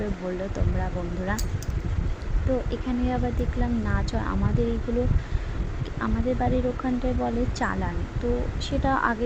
বললো তোমরা বন্ধুরা। তো এখানে আবার দেখলাম নাচ হয়। আমাদের এইগুলো আমাদের বাড়ির ওখানটায় বলে চালান। তো সেটা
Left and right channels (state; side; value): identical; both; correlation 1.00